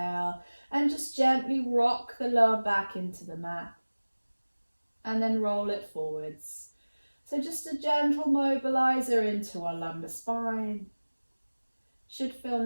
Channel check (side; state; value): both; inverted; correlation -1.00